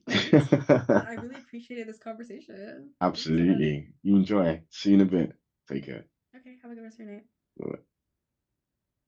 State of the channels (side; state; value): both; identical; correlation 1.00